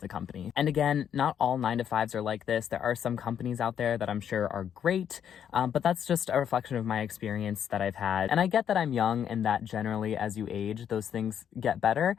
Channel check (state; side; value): quieter; right; 8.9 dB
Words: company. And again, not all 9-to-5s are like this. There are some companies out there that I'm sure are great, but that's just a reflection of my experience that I've had. And I get that I'm young and that generally as you age, those things get better.